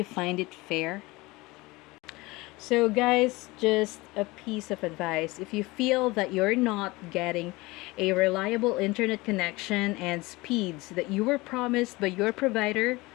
find it fair? So guys, just a piece of advice. If you feel that you're not getting a reliable internet connection and speeds that you were promised by your provider,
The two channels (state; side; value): quieter; right; 22.1 dB